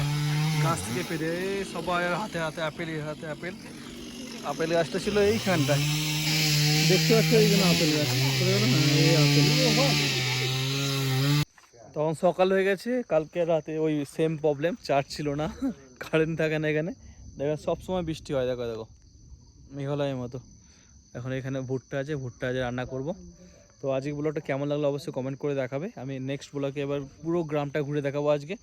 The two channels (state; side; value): identical; both; correlation 1.00